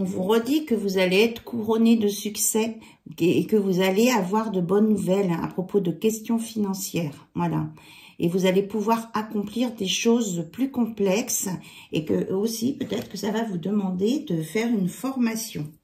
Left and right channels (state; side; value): identical; both; correlation 1.00